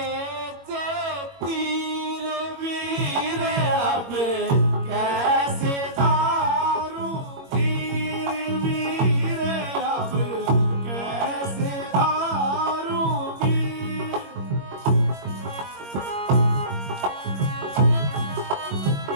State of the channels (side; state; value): left; late; 21 ms